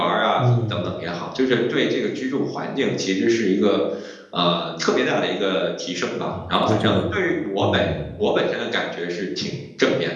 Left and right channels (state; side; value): identical; both; correlation 1.00